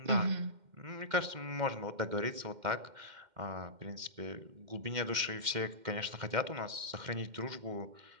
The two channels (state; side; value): late; left; 2.1 ms